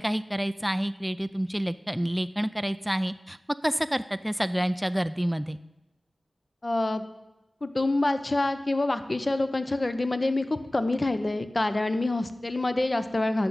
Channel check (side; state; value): both; normal; correlation 0.98